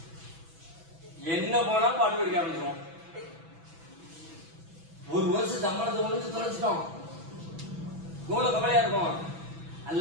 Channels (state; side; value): late; left; 6.1 ms